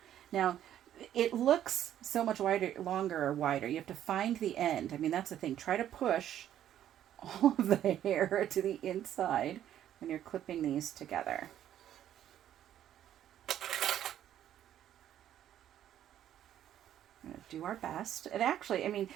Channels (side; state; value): left; quieter; 11.1 dB